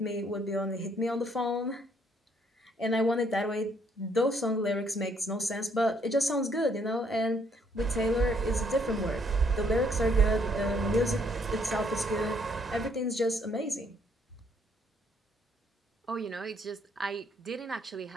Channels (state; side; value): normal; both; correlation 0.68